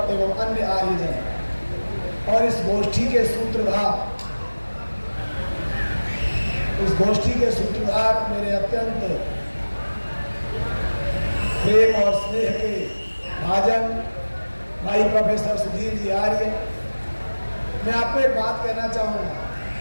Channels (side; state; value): both; inverted; correlation -1.00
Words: एवं अन्य आर्यजन और इस गोष्ठी के सूत्रधार मेरे अत्यंत प्रेम और स्नेह के भाजन भाई प्रोफेसर सुधीर जी आर्य। मैं आपको एक बात कहना चाहूँगा